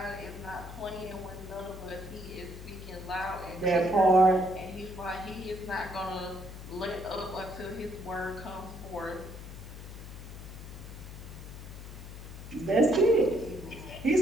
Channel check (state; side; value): noise; left; hum, 12 dB below the sound